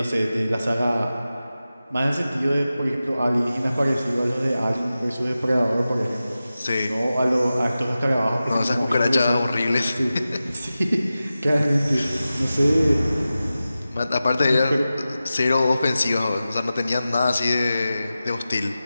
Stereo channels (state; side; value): inverted; both; correlation -0.94